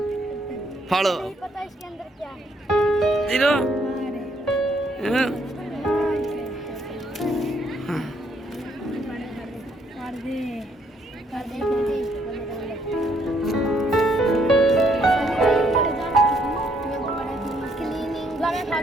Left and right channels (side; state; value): both; normal; correlation 0.70